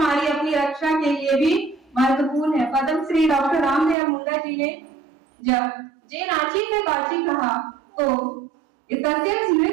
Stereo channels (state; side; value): drops out; left; at 4.0 s